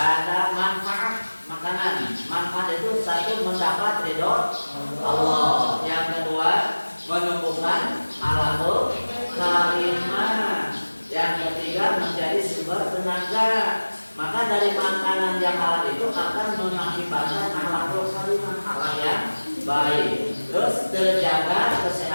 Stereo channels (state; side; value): inverted; both; correlation -1.00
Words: manfaat makanan. Manfaat itu satu mendapat ridho Allah. Yang kedua menumbuhkan alaqul karimah. Yang ketiga menjadi sumber tenaga. Maka dari makanan yang halal itu akan mengakibatkan alaqul karimah, halal yang baik. Terus terjaga